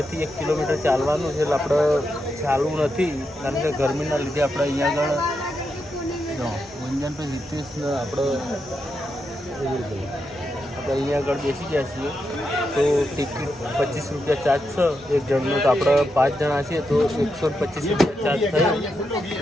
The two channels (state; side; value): normal; both; correlation 0.85